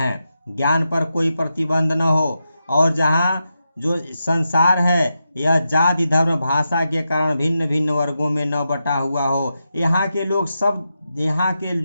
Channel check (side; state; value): both; inverted; correlation -0.87